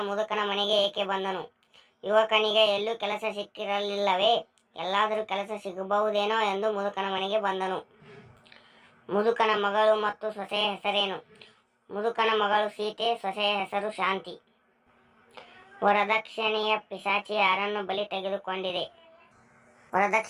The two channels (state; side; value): identical; both; correlation 1.00